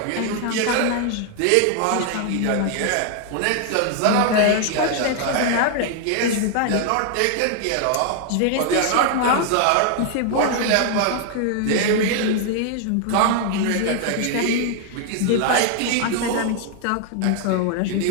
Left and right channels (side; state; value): both; different; correlation 0.00